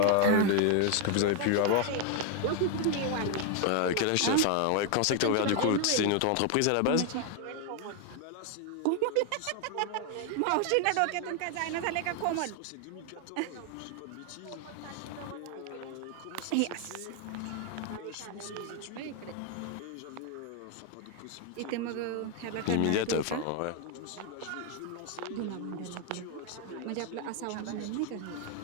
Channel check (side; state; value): both; different; correlation 0.01